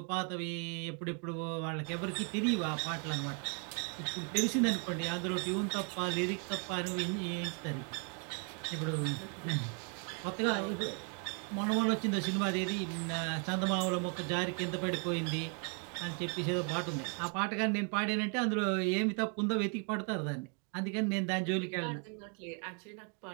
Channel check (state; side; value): quieter; left; 39.0 dB